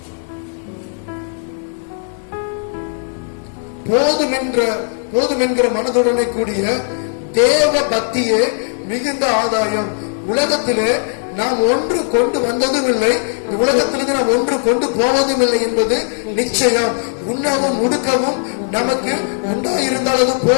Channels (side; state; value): right; silent; digital silence